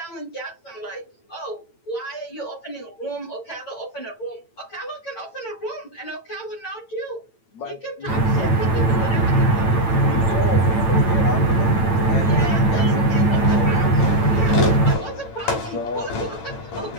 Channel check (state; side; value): late; right; 9.0 ms